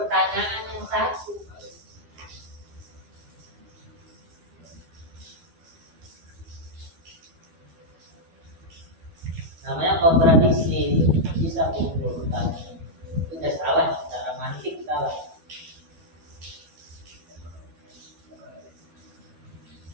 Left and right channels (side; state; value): left; late; 12 ms